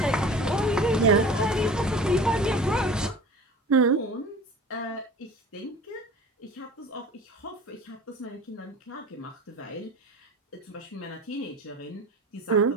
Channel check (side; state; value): both; normal; correlation 0.39